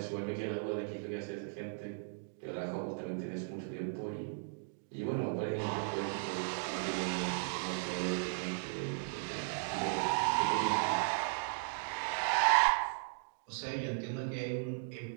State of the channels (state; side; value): silent; left; digital silence